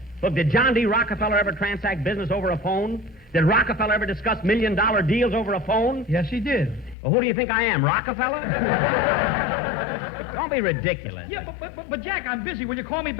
Look, did John D. Rockefeller ever transact business over a phone? Did Rockefeller ever discuss million-dollar deals over a phone? Yes, he did. Well, who do you think I am, Rockefeller? Don't be ridiculous. Yeah, but Jack, I'm busy. Will you call me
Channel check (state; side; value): drops out; right; at 7.0 s